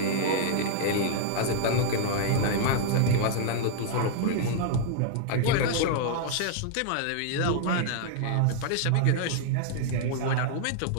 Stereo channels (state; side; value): different; both; correlation -0.01